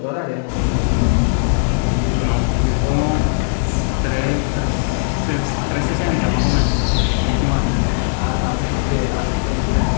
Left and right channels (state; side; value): silent; right; digital silence